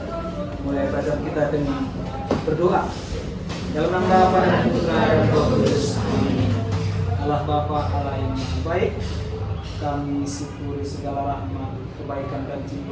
mulai pelajaran kita dengan berdoa. Dalam nama Bapa dan Putra dan Roh Kudus. Amin. Allah Bapa, Allah yang Maha Baik, kami syukuri segala rahmat, kebaikan dan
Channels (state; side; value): identical; both; correlation 1.00